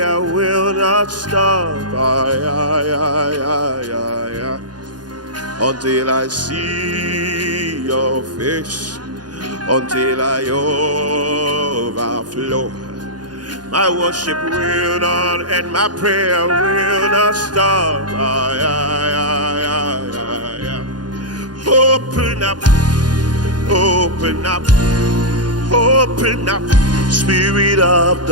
will not stop. Until I see your face, until I overflow. My worship will not end, my prayer will not stop. Open up, open up, open up, Spirit of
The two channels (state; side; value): late; left; 0.70 ms